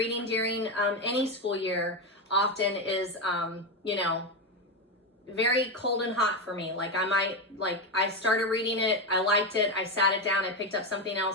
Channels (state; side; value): normal; both; correlation 0.11